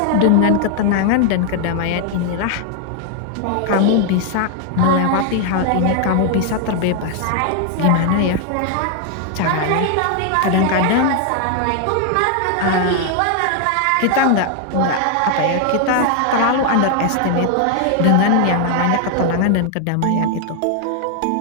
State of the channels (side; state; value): both; different; correlation 0.00